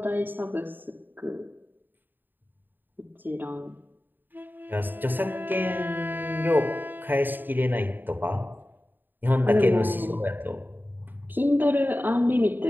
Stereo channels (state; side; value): late; left; 0.092 ms